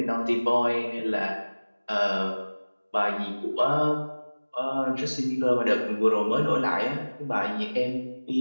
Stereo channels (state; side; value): inverted; both; correlation -1.00